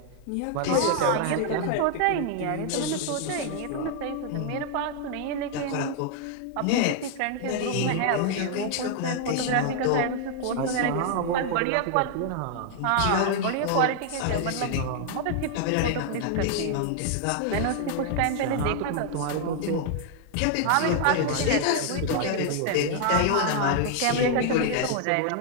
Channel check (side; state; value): both; different; correlation 0.00